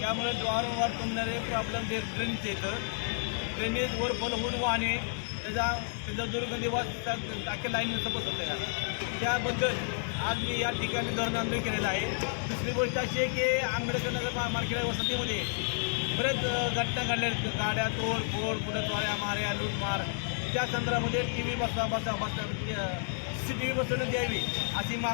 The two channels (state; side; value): silent; right; digital silence